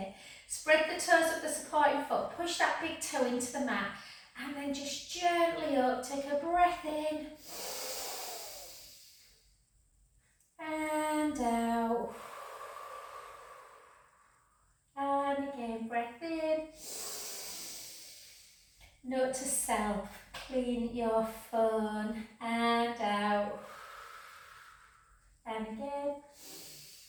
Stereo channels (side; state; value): both; identical; correlation 1.00